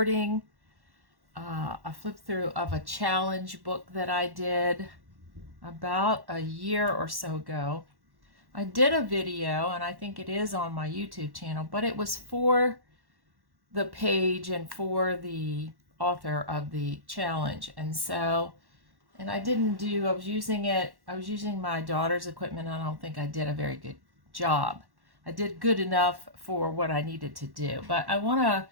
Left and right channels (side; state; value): left; late; 1.1 ms